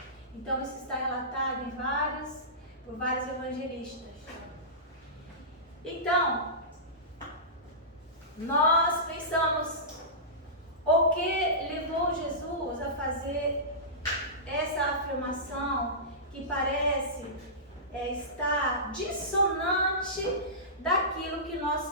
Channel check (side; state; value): both; normal; correlation -0.20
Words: Então isso está relatado por vários evangelistas. Então, nós pensamos, o que levou Jesus a fazer essa afirmação que parece estar dissonante daquilo que